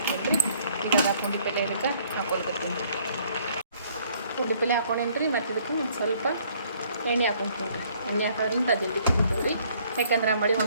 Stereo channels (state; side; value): inverted; both; correlation -0.62